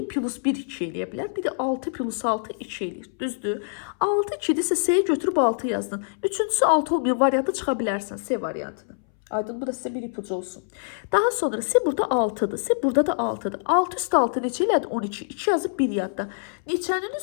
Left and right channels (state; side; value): silent; right; 61 dB below the other